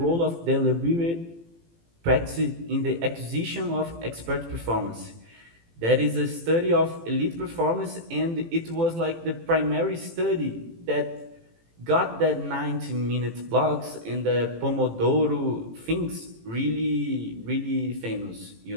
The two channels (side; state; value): left; late; 18 ms